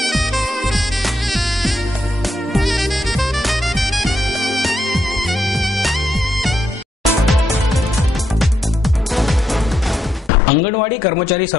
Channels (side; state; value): both; normal; correlation 0.79